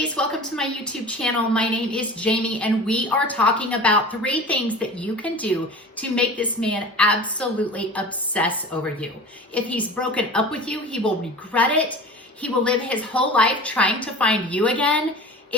welcome to my YouTube channel. My name is Jamie and we are talking about 3 things that you can do to make this man absolutely obsess over you. If he's broken up with you, he will regret it. He will live his whole life trying to find you again.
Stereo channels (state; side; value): normal; both; correlation 0.37